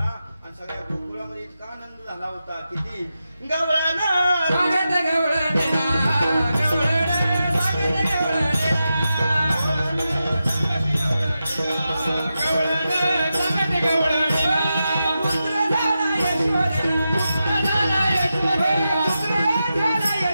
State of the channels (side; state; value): both; inverted; correlation -0.90